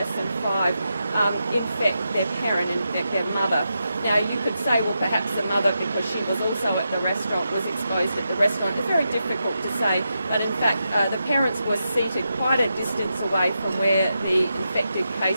than 5 infect their parent, infect their mother. Now, you could say, well, perhaps the mother, because she was also at the restaurant, was exposed at the restaurant. It's very difficult to say, but in fact, the parents were seated quite a distance away from where the infected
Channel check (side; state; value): both; inverted; correlation -0.86